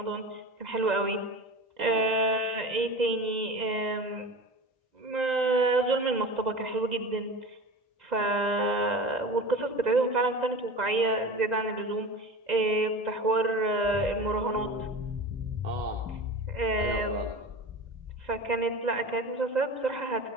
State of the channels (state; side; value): late; left; 2.0 ms